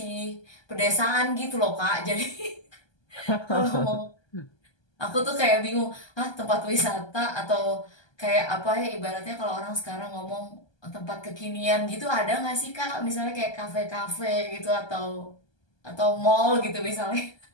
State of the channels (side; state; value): right; late; 1.2 ms